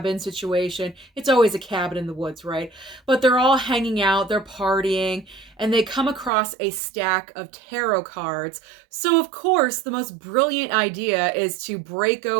situation. It's always a cabin in the woods, right? But they're all hanging out, they're partying, and they come across a stack of tarot cards. So of course, the most brilliant idea is to break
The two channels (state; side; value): drops out; left; at 6.3 s